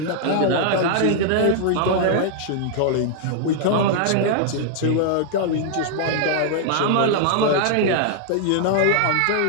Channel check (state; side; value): different; both; correlation 0.00